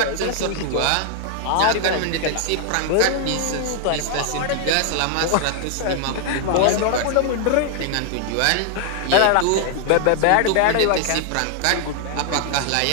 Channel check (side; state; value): both; different; correlation 0.00